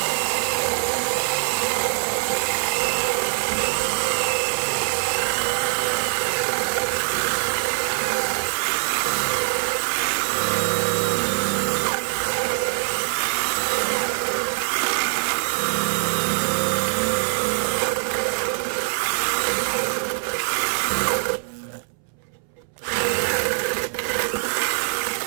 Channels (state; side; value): silent; left; 62 dB below the other